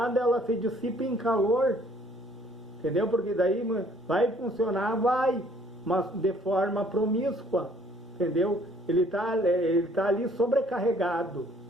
ela se dissipa em calor. Entendeu? Porque daí vai funcionar, mas de forma promíscua. Entendeu? Ele tá ali sobrecarregado.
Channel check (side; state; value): both; normal; correlation 0.60